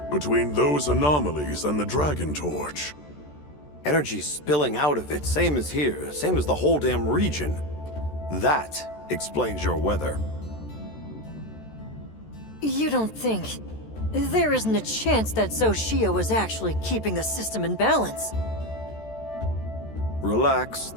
between those anomalies and the Dragon Torch. Energy spilling out of it, same as here, same as the whole damn region. That explains your weather. You don't think... There isn't a chance that Xochitl was actually keeping the system in balance. Relax,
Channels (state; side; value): late; right; 14 ms